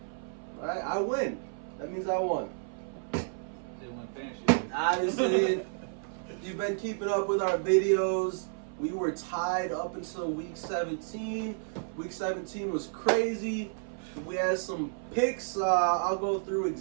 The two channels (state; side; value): silent; left; 57 dB below the other